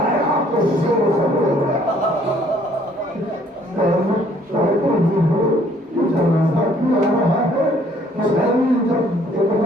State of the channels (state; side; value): normal; both; correlation 0.61